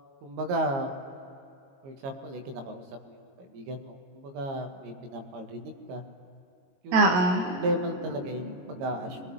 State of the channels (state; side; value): late; left; 22 ms